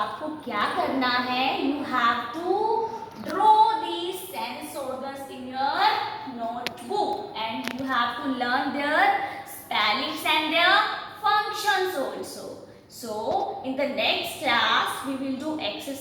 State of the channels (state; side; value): identical; both; correlation 1.00